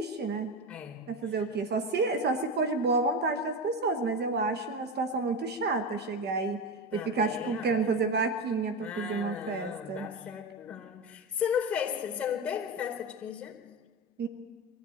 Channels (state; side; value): normal; both; correlation 0.19